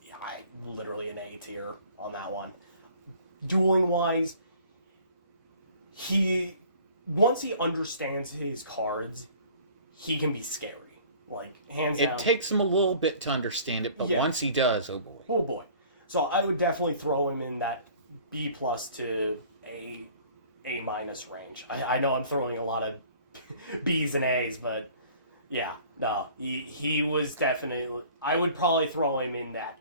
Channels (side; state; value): both; inverted; correlation -0.51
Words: Yeah, literally an A tier on that one. Dueling wise, once he understands his cards, he can be scary. Like, hands down. It takes him a little bit to understand it, but once he does, oh boy. Oh boy. So I would definitely throw him in that B+ to A- range. I know I'm throwing a lot of B's and A's, but yeah, no, he was definitely... I would probably throw him in that